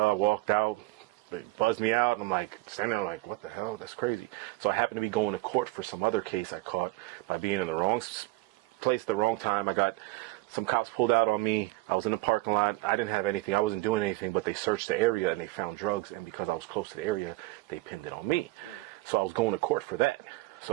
I walked out, they buzzed me out, and I'm like standing there like, what the hell? That's crazy. So I happened to be going to court for some other case I caught by being in the wrong place at the wrong time. I got some cops pulled out on me. I was in the parking lot. I didn't have anything. I wasn't doing anything, but they searched the area and they found drugs. And because I was close to the area, they pinned it on me. So I was going to court for that.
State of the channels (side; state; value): left; quieter; 20.4 dB